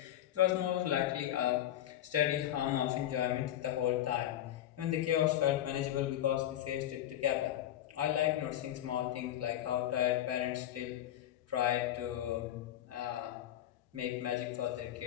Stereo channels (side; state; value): right; quieter; 12.3 dB